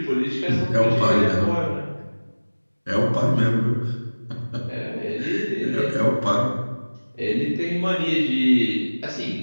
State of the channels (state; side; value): inverted; both; correlation -1.00